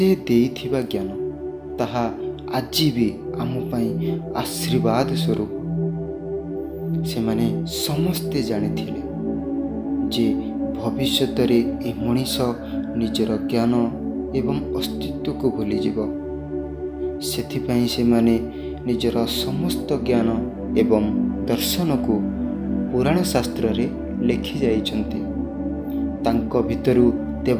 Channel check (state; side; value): identical; both; correlation 1.00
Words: देइथिबा ज्ञान ताहा आजी भी आम पाई आशीर्वाद स्वरूप। से माने समस्ते जानिथिले जे भविष्यत रे ए मनीष निजर ज्ञान एवं अस्तित्व को भूली जीव। सेथिपाई से माने निजर समस्त ज्ञान एवं दर्शन को पुराण शास्त्र रे लिखि जाइछन्ति। तांको भितरु